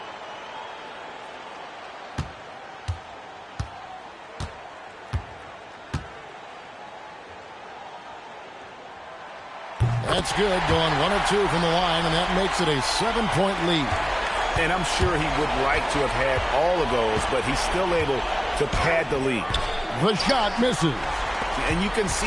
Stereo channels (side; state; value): both; identical; correlation 1.00